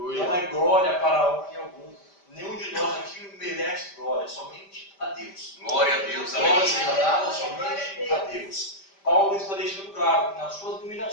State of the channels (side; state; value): right; late; 5.1 ms